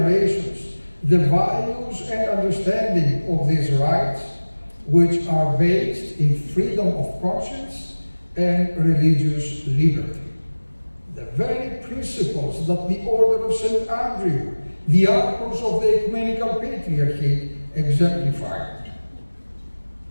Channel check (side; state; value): both; inverted; correlation -1.00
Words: the values and understanding of these rights, which are based in freedom of conscience and religious liberty. The very principles that the Order of St. Andrew, the archons of the Ecumenical Patriarchy, exemplified.